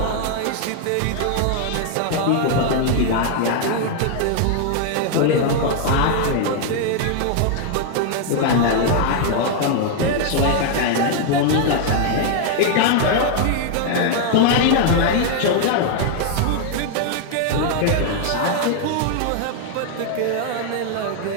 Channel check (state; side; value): different; both; correlation 0.00